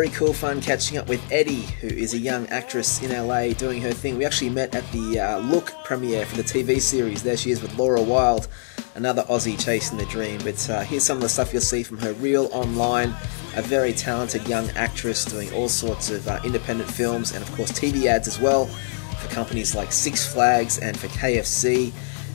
cool fun catching up with Eddie, who is a young actress in LA doing her thing. We actually met at the Look premiere for the TV series. There she is with Laura Wilde, another Aussie chasing the dream. But here's some of the stuff you'll see from her reel online. A very talented young actress doing all sorts of independent films and of course TV ads as well for companies like Six Flags and for KFC.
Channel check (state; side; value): silent; right; 63 dB below the other